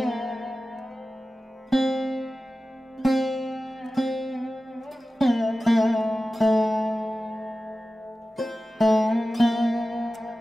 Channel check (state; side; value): normal; both; correlation 0.95